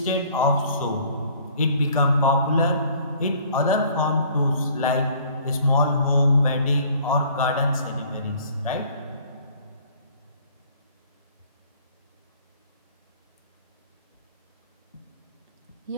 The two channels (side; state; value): both; inverted; correlation -0.55